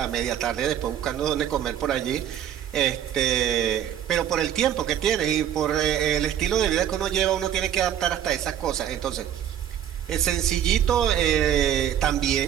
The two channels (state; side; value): quieter; left; 10.1 dB